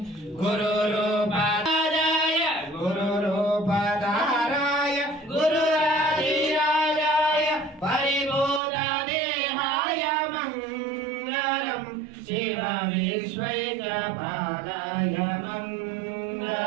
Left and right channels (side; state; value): left; drops out; at 8.6 s